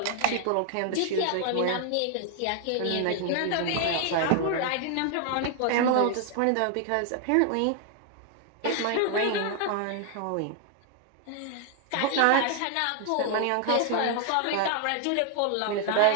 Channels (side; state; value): both; different; correlation 0.00